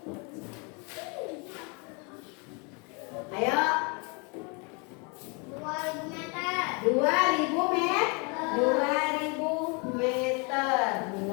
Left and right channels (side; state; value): right; quieter; 32.5 dB